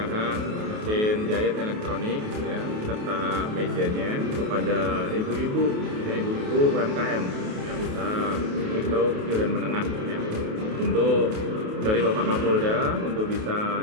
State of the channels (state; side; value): late; left; 28 ms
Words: mesin jahit elektronik ya serta mejanya kepada ibu-ibu ya ibu-ibu UMKM ya usaha mikro, kecil dan menengah ya. Untuk dari Bapak Kapolda untuk bisa